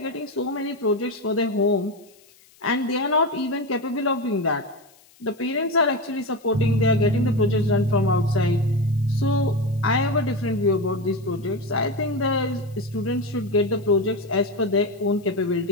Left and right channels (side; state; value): left; noise; hiss, 29 dB below the sound